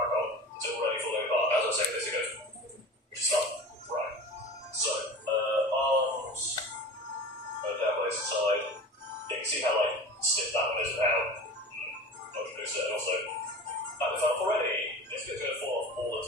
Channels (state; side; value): normal; both; correlation 0.35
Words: on. It's already falling apart. As I was saying, this it goes. Which is fun. Right. So, arms. Down by the side. You can see how, stiff that one is and how much looser. And also, that was up already. This bit's going to fall off all the